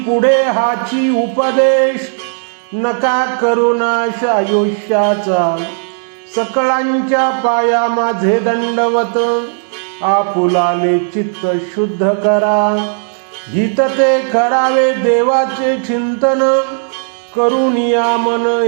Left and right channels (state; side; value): silent; left; digital silence